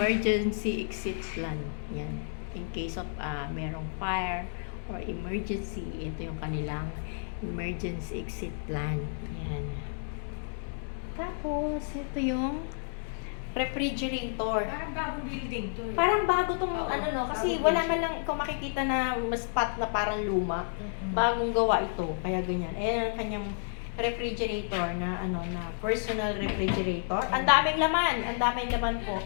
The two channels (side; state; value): right; silent; 57 dB below the other